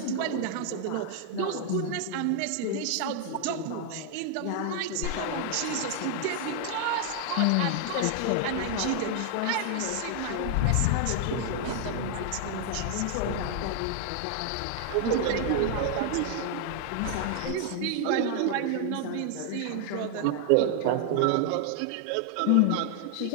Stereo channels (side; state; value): both; different; correlation 0.00